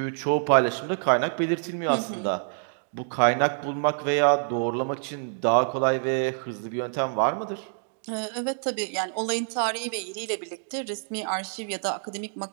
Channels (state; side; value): silent; left; digital silence